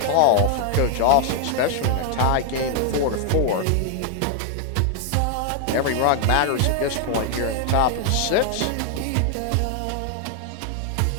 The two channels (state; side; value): different; both; correlation 0.00